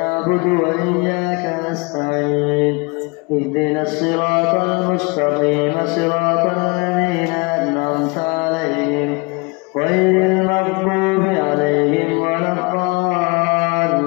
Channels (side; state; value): right; quieter; 29.2 dB